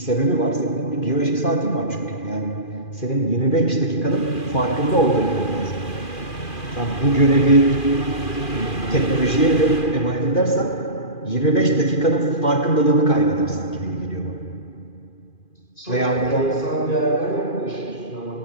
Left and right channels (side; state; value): right; late; 2.4 ms